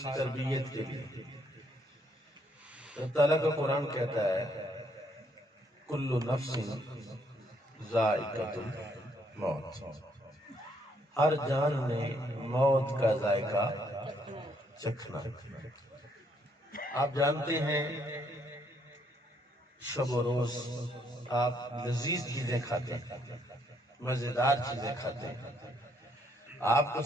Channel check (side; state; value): both; normal; correlation 0.71